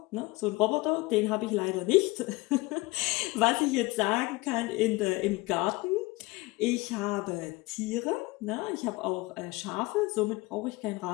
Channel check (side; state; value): right; quieter; 22.5 dB